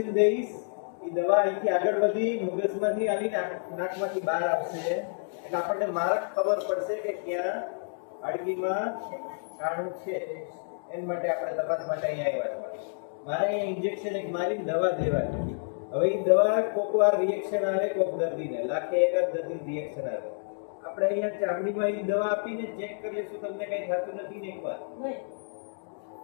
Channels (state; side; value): silent; right; digital silence